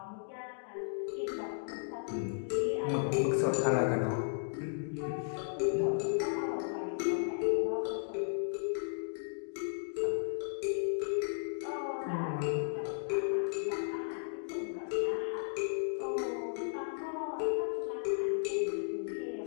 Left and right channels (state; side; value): silent; right; digital silence